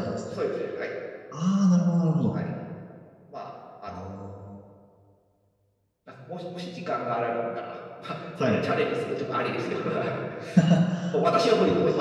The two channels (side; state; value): both; identical; correlation 1.00